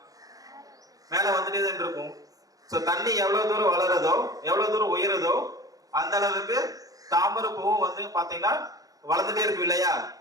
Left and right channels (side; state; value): left; late; 0.17 ms